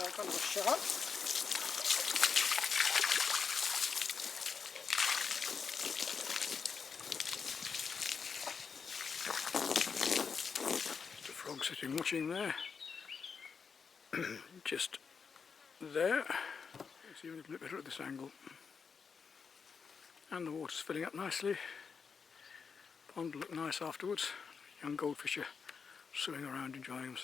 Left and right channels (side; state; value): right; quieter; 5.8 dB